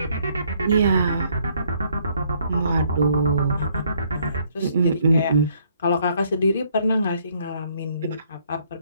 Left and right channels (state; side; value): inverted; both; correlation -0.67